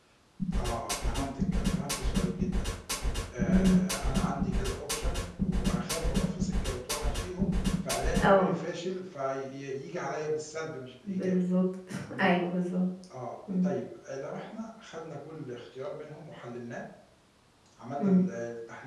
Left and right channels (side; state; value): both; identical; correlation 1.00